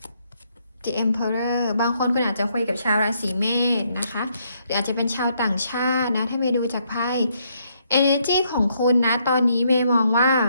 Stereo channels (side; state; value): both; inverted; correlation -0.73